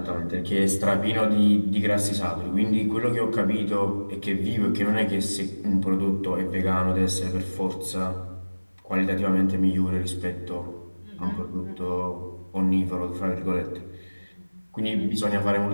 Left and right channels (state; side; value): inverted; both; correlation -1.00